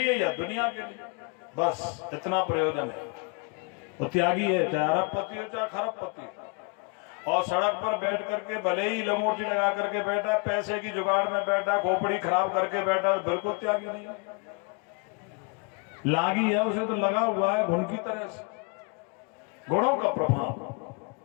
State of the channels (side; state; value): right; quieter; 33.5 dB